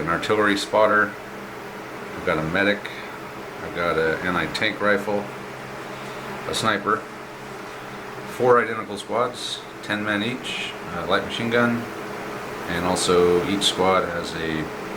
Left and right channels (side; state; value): both; identical; correlation 1.00